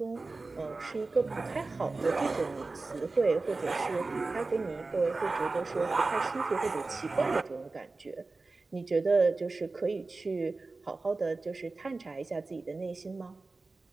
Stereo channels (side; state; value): left; quieter; 3.6 dB